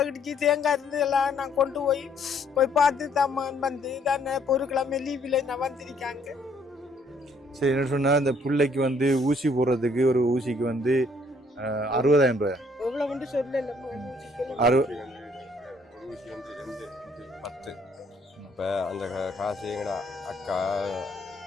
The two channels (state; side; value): normal; both; correlation 0.65